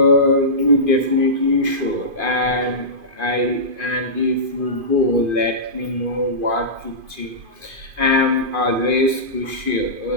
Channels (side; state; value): left; late; 2.5 ms